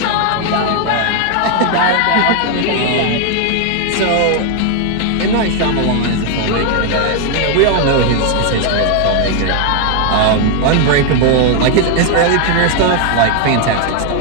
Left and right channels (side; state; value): both; different; correlation 0.00